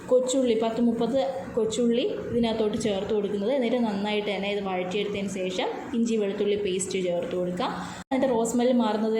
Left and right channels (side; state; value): both; identical; correlation 1.00